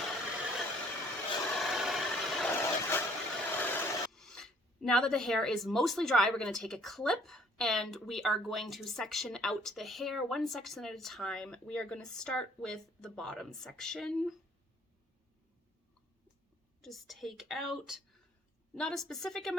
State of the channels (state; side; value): normal; both; correlation 0.60